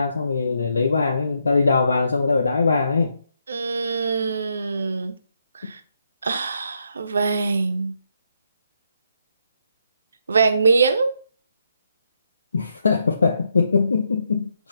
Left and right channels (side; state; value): both; inverted; correlation -0.78